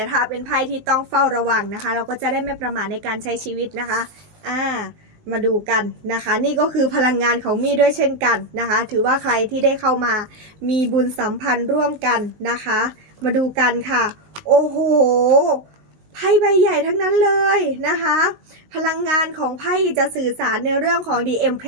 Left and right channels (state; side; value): late; left; 19 ms